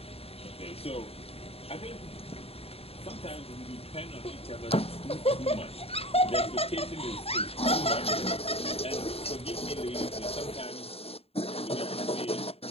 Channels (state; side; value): late; right; 0.28 ms